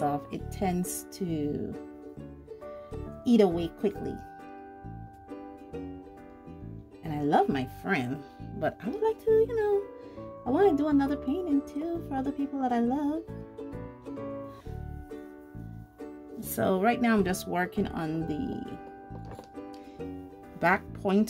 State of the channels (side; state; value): both; identical; correlation 1.00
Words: it tends to eat away quickly. And I love my friend, but I would like to, you know, I want to do another painting too for other people that I love. So right now I'm just working on the back